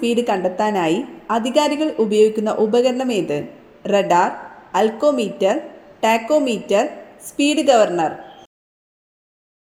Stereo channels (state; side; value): identical; both; correlation 1.00